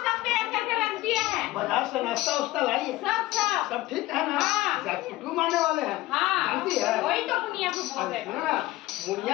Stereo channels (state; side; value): quieter; right; 17.8 dB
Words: सब तैयार करके रख दिया है। बाजार से नाश्ता उस्ता लाइए सब सब सब ठीक है ना? हाँ। कुटुम्ब आने वाले हैं हाँ जानती है? वही तो मुनिया को बोल रहे सुनो ना